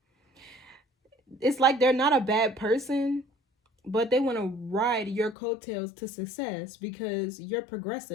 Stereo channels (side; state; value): right; drops out; at 5.4 s